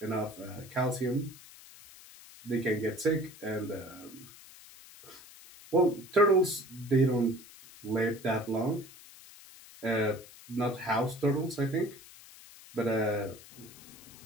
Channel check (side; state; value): left; noise; hiss, 19 dB below the sound